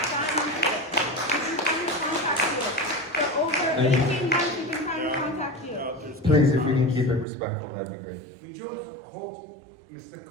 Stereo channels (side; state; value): left; drops out; at 7.2 s